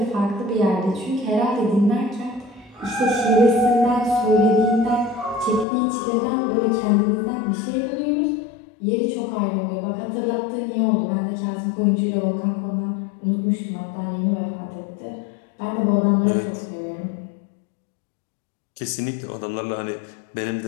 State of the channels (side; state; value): right; drops out; at 5.7 s